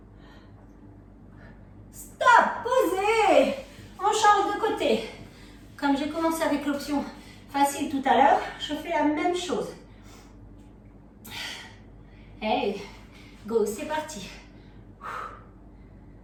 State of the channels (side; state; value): both; identical; correlation 1.00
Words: Stop. Posez. On change de côté. Comme j'ai commencé avec l'option facile tout à l'heure, je fais la même chose. Hey. Go, c'est parti.